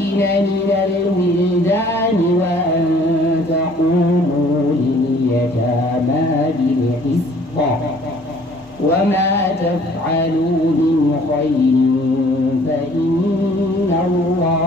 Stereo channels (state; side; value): normal; both; correlation 0.56